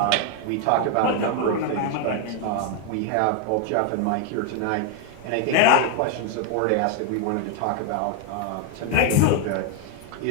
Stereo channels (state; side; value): different; both; correlation 0.00